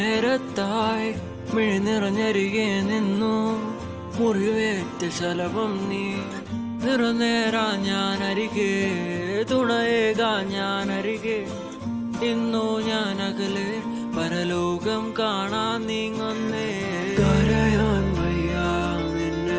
മിഴി നിറഞ്ഞരികെ നിന്നു മുറിവേറ്റ ശലഭം നീ നിറനേരാ ഞാൻ അരികെ തുണയേകാ ഞാൻ അരികെ ഇന്നു ഞാൻ അകലെ പരലോകം കാണാൻ നീങ്ങുന്നേ കരയാൻ വയ്യ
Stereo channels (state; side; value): identical; both; correlation 1.00